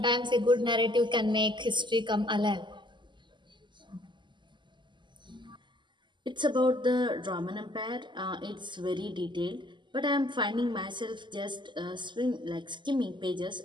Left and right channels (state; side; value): late; left; 0.22 ms